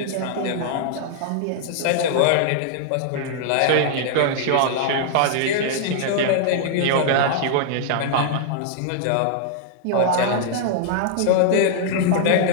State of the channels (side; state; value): both; different; correlation -0.01